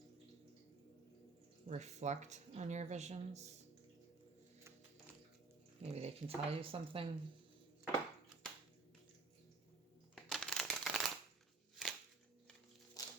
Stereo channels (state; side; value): quieter; left; 3.7 dB